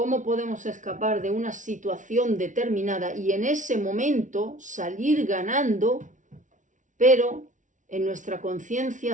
podemos escapar de una situación determinada y en ese momento salir ganando, pero en nuestra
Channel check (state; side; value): late; left; 0.37 ms